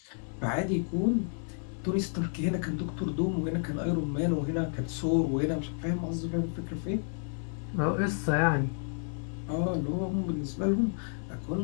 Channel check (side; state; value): right; silent; 57 dB below the other